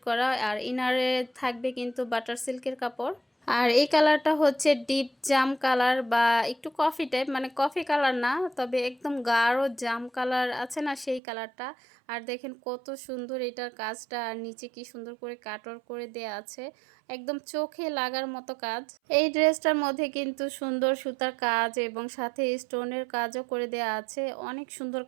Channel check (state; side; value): drops out; left; at 11.2 s